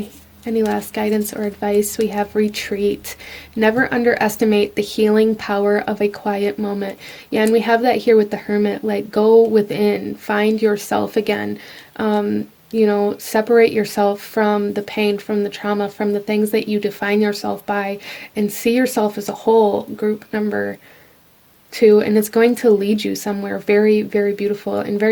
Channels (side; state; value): both; identical; correlation 1.00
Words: Any last guidance or advice? We have retreat. Never underestimate the healing power of a quiet moment. Yeah, and we have that here with the Hermit. Like, go within, find yourself again. You know, separate yourself from the pain, from the trauma, from the things that you define yourself by, and see yourself as a whole, group number 2. And it's going to lead you somewhere very, very beautiful and